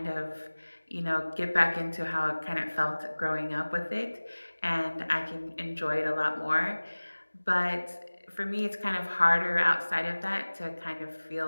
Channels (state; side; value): inverted; both; correlation -1.00